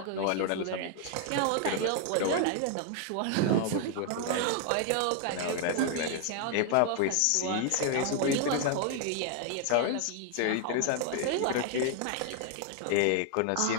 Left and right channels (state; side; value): different; both; correlation 0.00